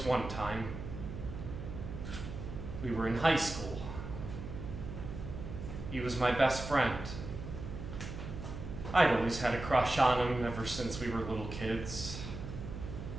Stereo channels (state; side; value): noise; right; hum, 8 dB below the sound